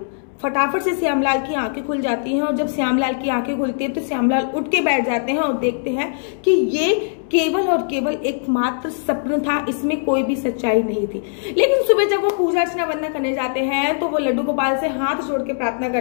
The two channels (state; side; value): silent; right; 65 dB below the other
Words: फटाफट से श्यामलाल की आंखें खुल जाती हैं और जब श्यामलाल की आंखें खुलती है तो श्यामलाल उठ के बैठ जाते हैं और देखते हैं कि ये केवल और केवल एकमात्र सपना था, इसमें कोई भी सच्चाई नहीं थी। लेकिन सुबह जब वो पूजा अर्चना वंदना करने जाते हैं तो वो लड्डू गोपाल से हाथ जोड़ के प्रार्थना